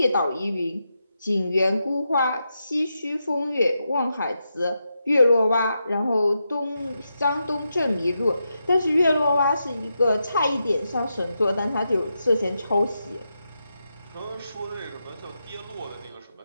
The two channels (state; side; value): inverted; both; correlation -0.86